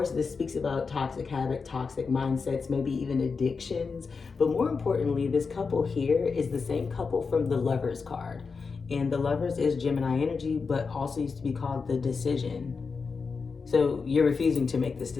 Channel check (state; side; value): quieter; right; 4.9 dB